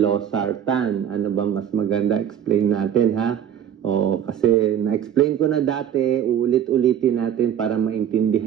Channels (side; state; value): left; quieter; 9.3 dB